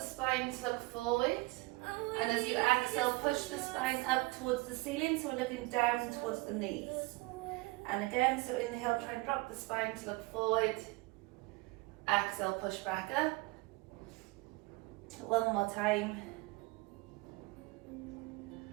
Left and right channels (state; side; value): quieter; left; 23.2 dB